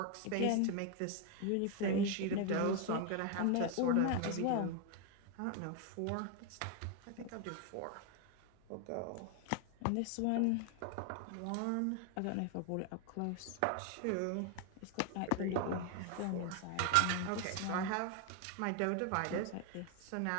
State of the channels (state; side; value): different; both; correlation 0.01